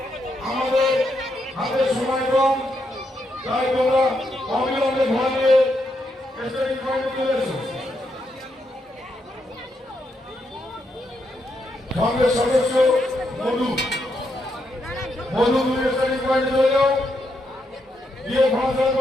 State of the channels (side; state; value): both; normal; correlation 0.80